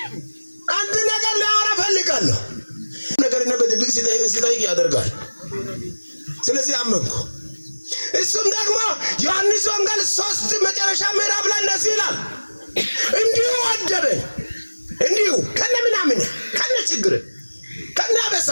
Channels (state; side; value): inverted; both; correlation -1.00